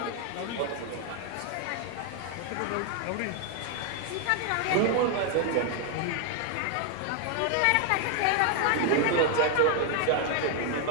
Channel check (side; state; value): both; different; correlation 0.00